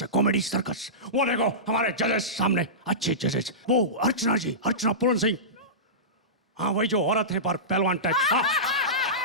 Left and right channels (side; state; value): both; normal; correlation -0.19